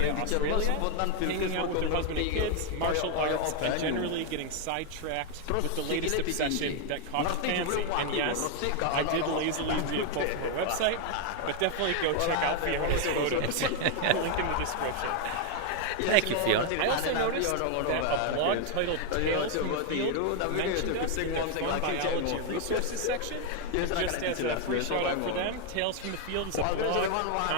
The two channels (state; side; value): different; both; correlation 0.00